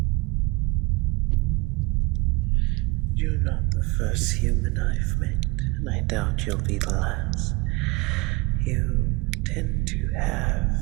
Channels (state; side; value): quieter; left; 25.0 dB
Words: You're not the first human I've met, and I doubt you'll be the last. You tend to have